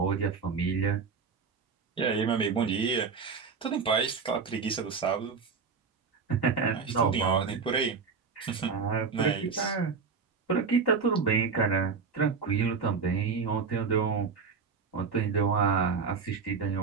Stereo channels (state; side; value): quieter; left; 5.4 dB